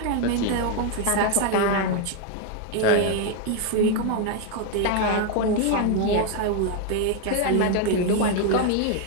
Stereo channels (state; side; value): different; both; correlation 0.01